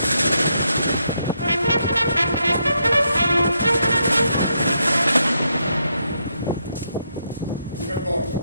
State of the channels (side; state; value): both; inverted; correlation -0.79